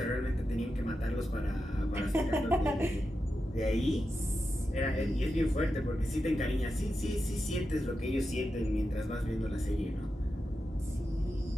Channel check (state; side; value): normal; both; correlation 0.89